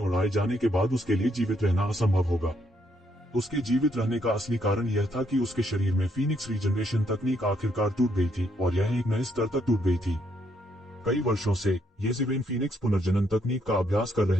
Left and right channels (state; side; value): normal; both; correlation 0.73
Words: जाने के बाद उसके लिए जीवित रहना असंभव होगा। उसके जीवित रहने का असली कारण यह था कि उसके शरीर में फीनिक्स रीजनरेशन तकनीक आखिरकार टूट गई थी, और यह एक नए स्तर तक टूट गई थी। कई वर्षों से येज़ेबेल फीनिक्स पुनर्जनन तकनीक का अभ्यास कर